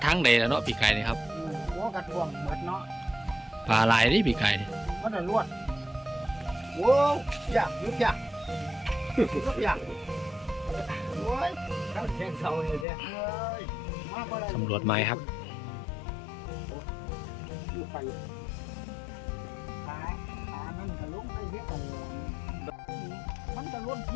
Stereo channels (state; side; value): drops out; right; at 12.9 s